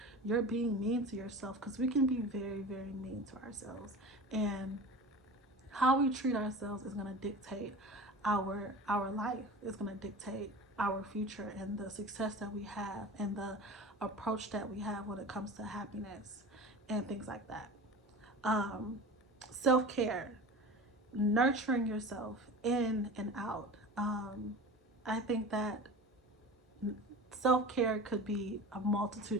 you're being mean to yourself, because we can be very, very mean to ourselves. And how we treat ourselves is going to dictate our life. It's going to dictate our future and the success that we have and the approach that we have when it comes to happiness and things like that. um Self-care, nurturing yourself in and out. I think that self-care could be a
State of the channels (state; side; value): normal; both; correlation 0.35